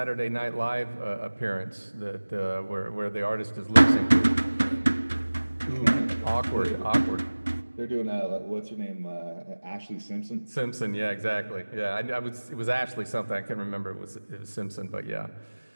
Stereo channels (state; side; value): inverted; both; correlation -1.00